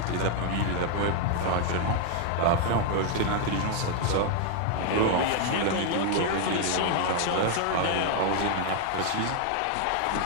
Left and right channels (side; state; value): both; different; correlation 0.00